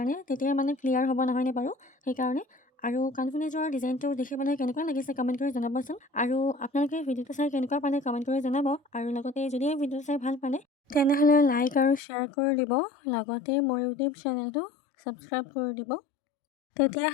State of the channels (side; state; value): right; drops out; at 12.0 s